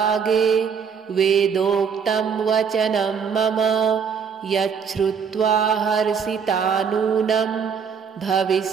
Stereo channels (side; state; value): left; quieter; 6.6 dB